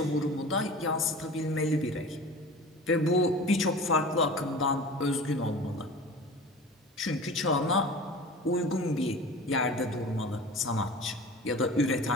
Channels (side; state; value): both; normal; correlation 0.37